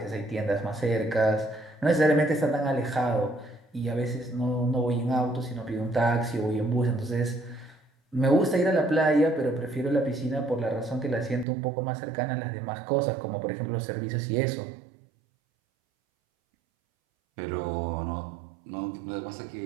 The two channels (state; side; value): drops out; left; at 11.5 s